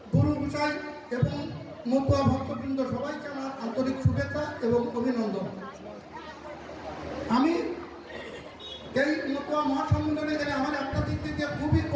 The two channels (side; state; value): both; identical; correlation 1.00